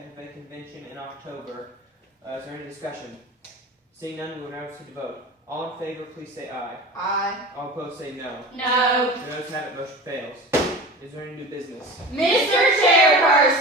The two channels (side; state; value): both; normal; correlation 0.34